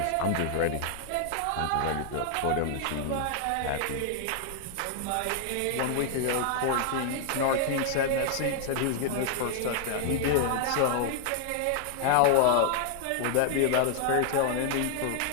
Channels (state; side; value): different; both; correlation 0.00